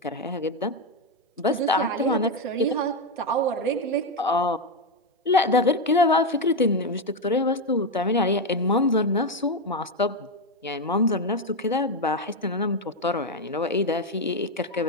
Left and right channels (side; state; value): both; normal; correlation 0.08